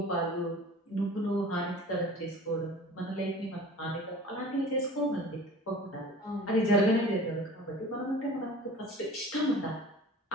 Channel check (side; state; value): both; normal; correlation 0.42